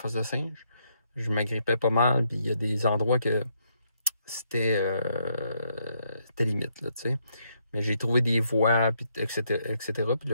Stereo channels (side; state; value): both; inverted; correlation -0.75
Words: de Singe. Je m'agrippais pas mal, puis il y a des endroits que c'était limite, là, tu sais. Mais j'ai trouvé des voies, puis, etc., etc. Puis là,